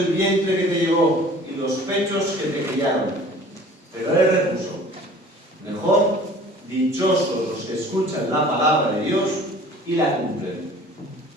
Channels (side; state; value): both; normal; correlation 0.48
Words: vientre que te llevó y los pechos que te criaron. Pero él repuso, mejor, dichosos los que escuchan la palabra de Dios y la cumplen.